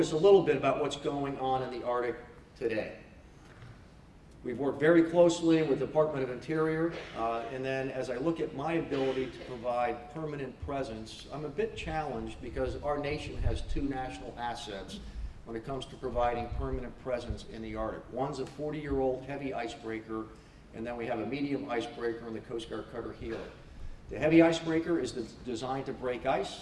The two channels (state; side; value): identical; both; correlation 1.00